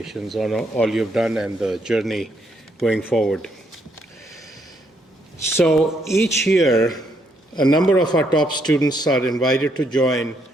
on all you've done and the journey going forward. So each year, a number of our top students are invited to join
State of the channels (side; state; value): both; normal; correlation 0.74